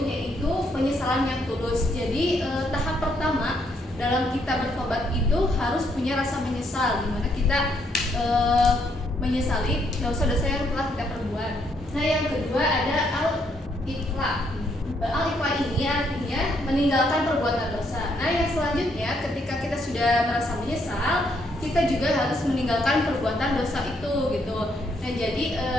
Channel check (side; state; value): both; normal; correlation 0.73